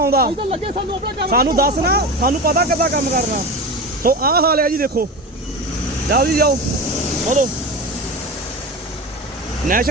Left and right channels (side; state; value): both; normal; correlation 0.26